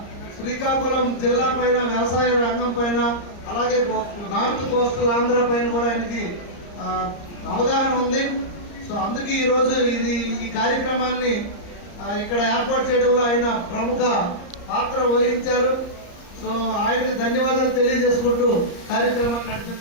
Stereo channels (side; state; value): right; late; 34 ms